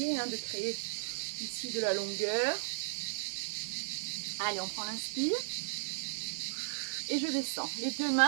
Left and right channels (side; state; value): left; silent; digital silence